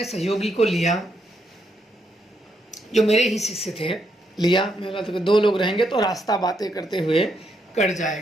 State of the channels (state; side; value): normal; both; correlation 0.78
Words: सहयोगी को लिया जो मेरे ही शिष्य थे, लिया। मैं बोला तो 2 लोग रहेंगे तो रास्ता बातें करते हुए कट